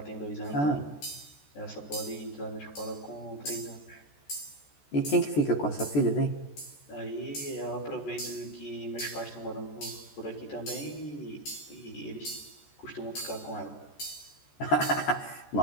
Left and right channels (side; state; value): right; late; 14 ms